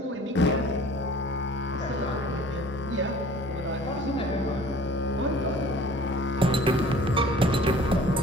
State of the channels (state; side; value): normal; both; correlation 0.48